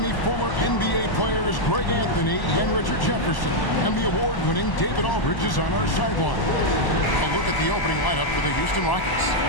me, former NBA players Greg Anthony and Richard Jefferson. And the award-winning David Aldridge is on our sideline. A look at the opening lineup for the Houston Rockets.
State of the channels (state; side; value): late; right; 1.0 ms